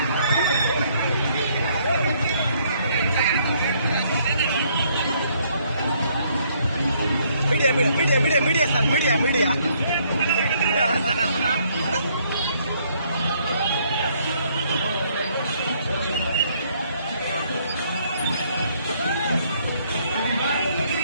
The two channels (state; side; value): inverted; both; correlation -0.67